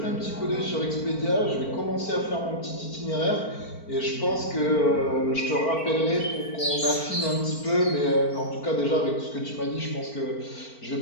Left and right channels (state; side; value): late; right; 4.4 ms